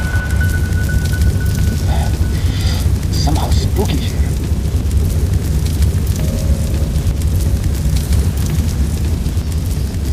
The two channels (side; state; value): both; identical; correlation 1.00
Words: Somehow spooky here.